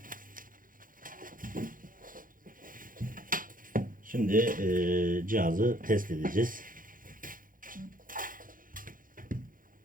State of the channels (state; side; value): late; left; 0.40 ms